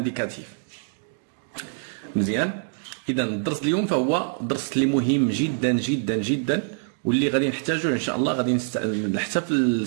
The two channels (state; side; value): silent; left; digital silence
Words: مزيان، إذا الدرس اليوم فهو درس اللي مهم جدا جدا جدا، واللي غادي نحتاجوه ان شاء الله غادي حتى في